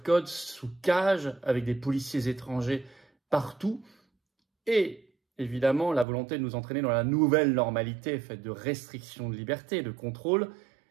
code, sous cage, avec des policiers étrangers partout. Et évidemment, la volonté de nous entraîner dans la nouvelle normalité faite de restrictions de liberté, de contrôle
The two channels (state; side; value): drops out; left; at 6.1 s